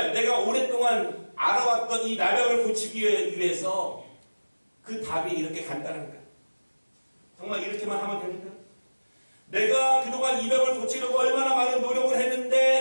내가 오랫동안 알아왔던 이 나병을 고치기 위해서 그 답이 이렇게 간단한가? 정말 이렇게만 하면 됩니까? 내가 그동안 이 병을 고치려고 얼마나 많은 노력을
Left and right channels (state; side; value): inverted; both; correlation -1.00